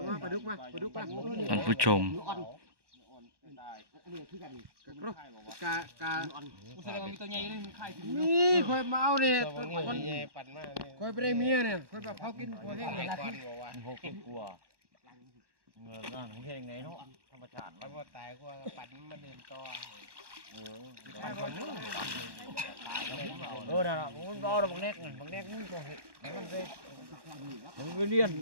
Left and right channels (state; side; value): late; left; 1.1 ms